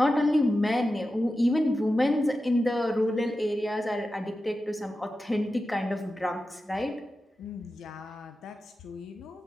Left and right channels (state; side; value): normal; both; correlation 0.92